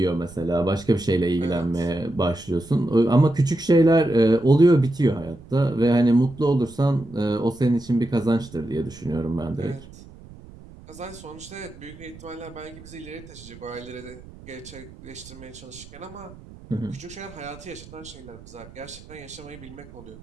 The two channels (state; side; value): noise; right; rumble, 19 dB below the sound